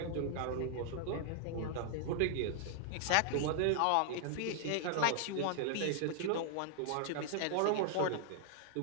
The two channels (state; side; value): different; both; correlation -0.01